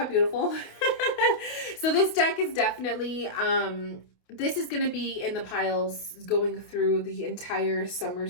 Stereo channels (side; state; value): right; late; 28 ms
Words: beautiful? So this deck is definitely, this is going to be in the piles going through the entire summer